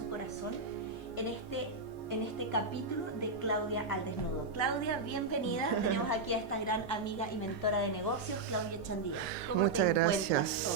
corazón en este capítulo de Claudia al desnudo. Claudia, bienvenida. Tenemos aquí a esta gran amiga y mentora de negocios, Claudia Chandía. ¿Cómo Muchas te encuentras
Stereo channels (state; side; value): quieter; left; 3.8 dB